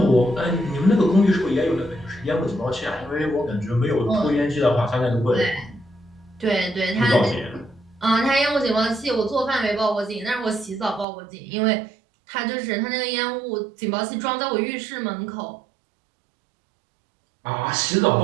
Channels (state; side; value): drops out; left; at 11.1 s